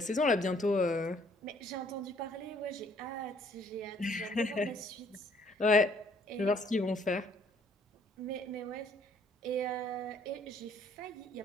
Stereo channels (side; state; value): both; normal; correlation 0.62